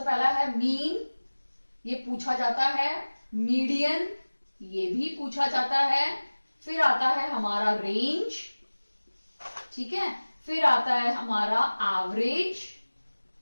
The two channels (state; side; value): inverted; both; correlation -1.00